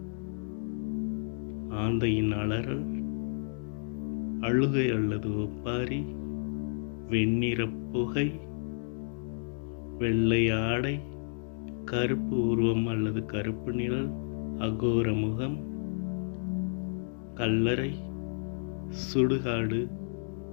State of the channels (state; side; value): silent; right; digital silence